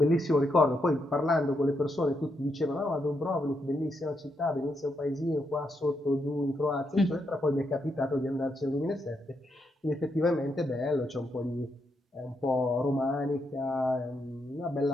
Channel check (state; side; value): normal; both; correlation 0.80